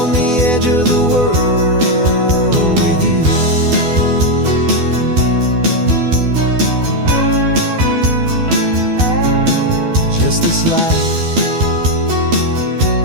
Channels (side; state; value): left; late; 12 ms